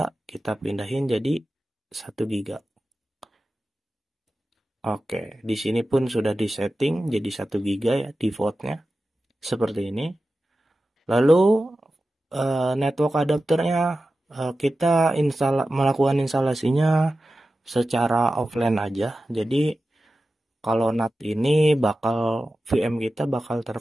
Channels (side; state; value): both; normal; correlation 0.94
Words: kita pindahin jadi 1 GB. Oke, di sini pun sudah disetting jadi 1 GB ya defaultnya. Seperti ini. Lalu network adapternya kita melakukan instalasinya secara offline aja. Jadi kalau NAT ini VM kita bakal